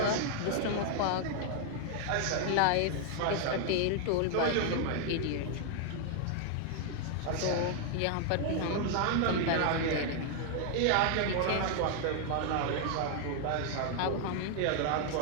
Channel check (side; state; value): both; different; correlation 0.00